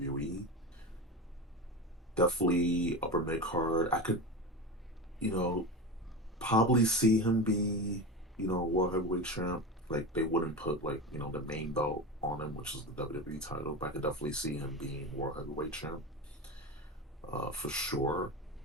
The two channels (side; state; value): both; normal; correlation 0.24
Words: definitely upper mid card. I could, you know, probably see him be, world heavyweight champ. Like they wouldn't put like, the main belt on him, which is the WWE title, but I could definitely see him being world heavyweight champ. For sure.